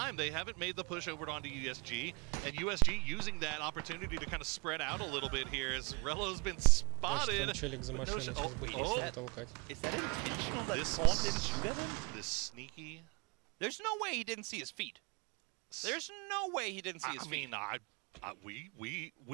They haven't made the push over onto USG, and USG using that opportunity to kind of spread out a little bit here as Rello's been spotted. Там челик за машиной, сейчас будет машину толкать. Is that intentional that Corn didn't shoot at him? This sneaky. There's no way he didn't see his feet. There's no way he didn't see his feet. I mean,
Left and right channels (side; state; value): left; quieter; 27.6 dB